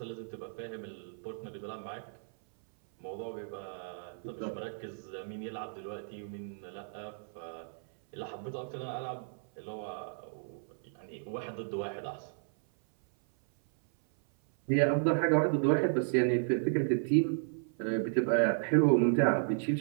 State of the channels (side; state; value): left; silent; 55 dB below the other